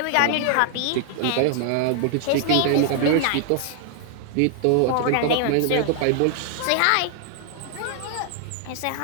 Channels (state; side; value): different; both; correlation 0.00